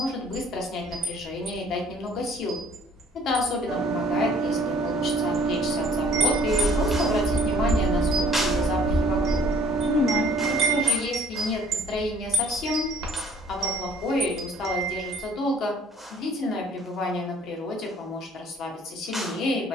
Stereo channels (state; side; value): normal; both; correlation 0.57